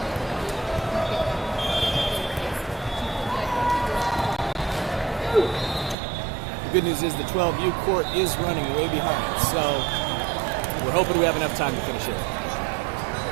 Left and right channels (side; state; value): left; drops out; at 6.0 s